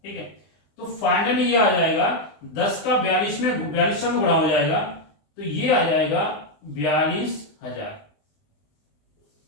ठीक है। तो फाइनली ये आ जाएगा 10 का 4200 में गुणा हो जाएगा, तो ये आ जाएगा 42,000,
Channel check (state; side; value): late; right; 20 ms